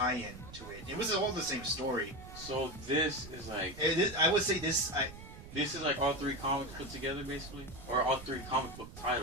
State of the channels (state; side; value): noise; right; rumble, 14 dB below the sound